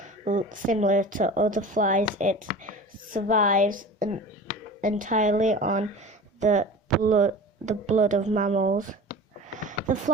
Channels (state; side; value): normal; both; correlation 0.36